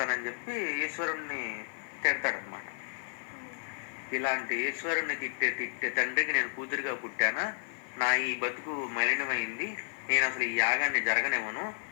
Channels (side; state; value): right; silent; 56 dB below the other